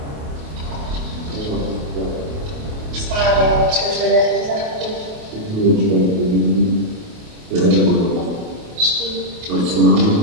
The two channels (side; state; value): left; late; 28 ms